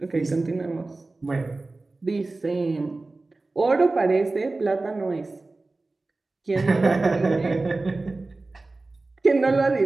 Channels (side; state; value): left; quieter; 3.3 dB